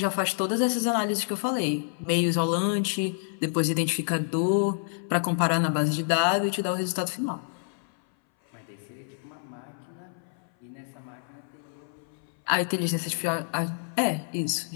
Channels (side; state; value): right; silent; 59 dB below the other